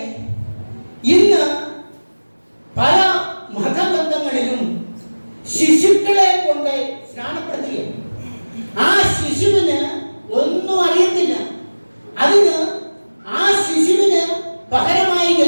ഇന്ന് പല മതബന്ധങ്ങളിലും ശിശുക്കളെ കൊണ്ട് സ്നാനപ്പെടുത്തുകയാണ്. ആ ശിശുവിന് ഒന്നും അറിയത്തില്ല. അതിന് ആ ശിശുവിന് പകരമായി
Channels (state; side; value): inverted; both; correlation -1.00